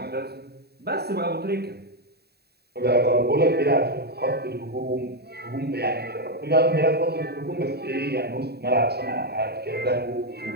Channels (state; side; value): late; left; 0.47 ms